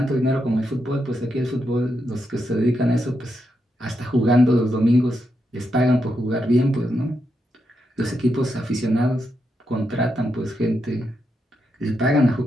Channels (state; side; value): normal; both; correlation 0.83